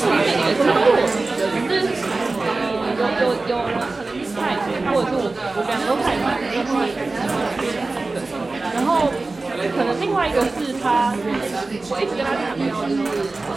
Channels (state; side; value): quieter; left; 3.4 dB